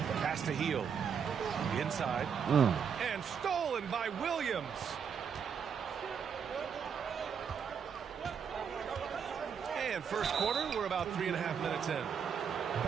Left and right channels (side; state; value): left; quieter; 7.1 dB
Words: Pass to Hield. Inside. And stolen by Williams. And first quarter, we're about 3.5 minutes in.